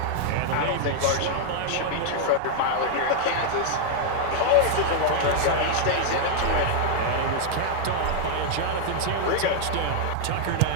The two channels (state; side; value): different; both; correlation 0.00